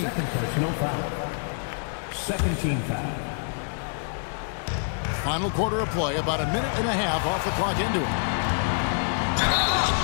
Second personal foul. Second team foul. Final quarter of play, about a minute and a half off the clock into it.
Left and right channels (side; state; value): right; silent; digital silence